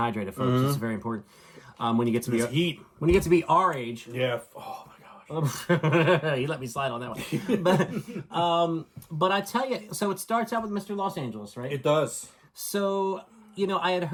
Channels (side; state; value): both; identical; correlation 1.00